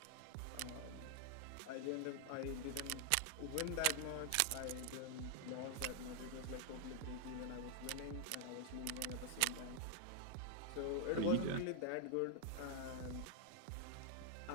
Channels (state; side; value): different; both; correlation 0.00